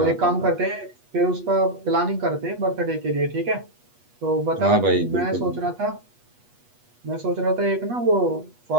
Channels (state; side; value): late; left; 8.3 ms